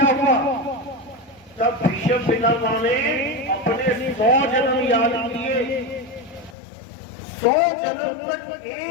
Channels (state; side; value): drops out; right; at 6.6 s